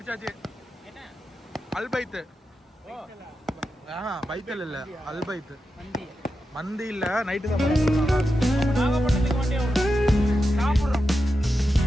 அல்பைத்து. பைத்தல் இல்ல, அல்பைத்து. மந்தி இல்ல, நைட்டு தான் நாகப்பட்டினத்துக்கு வண்டி சாப்பிடுறோம்.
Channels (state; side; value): normal; both; correlation 0.89